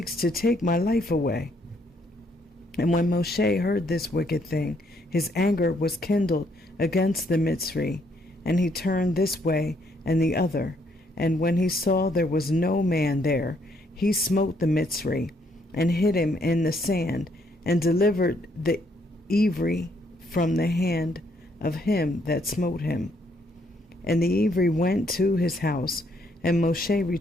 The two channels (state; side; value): normal; both; correlation 0.71